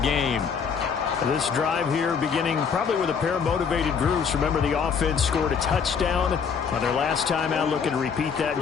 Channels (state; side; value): quieter; right; 6.4 dB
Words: This drive here beginning probably with a pair of motivated groups. Remember, the offense scored a touchdown on their last time out, looking to repeat that in